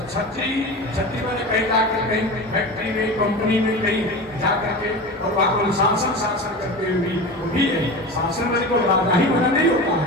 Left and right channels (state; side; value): normal; both; correlation 0.29